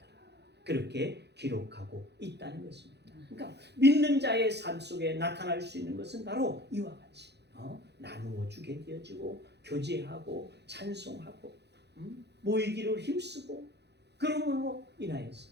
그렇게 기록하고 있다는 것입니다. 그러니까 믿는 자의 삶 속에 나타날 수 있는 것은 바로 이와 같이 나누어 주게 되어지고 교제하고 찬송하고 모이기를 힘쓰고 그러므로 인하여서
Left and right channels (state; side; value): late; left; 0.49 ms